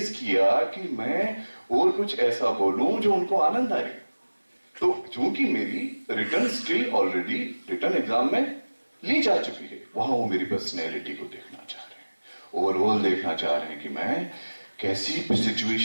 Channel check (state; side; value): inverted; both; correlation -1.00